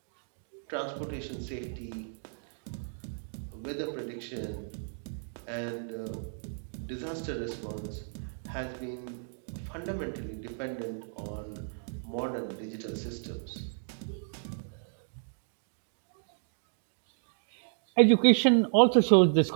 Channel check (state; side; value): silent; left; digital silence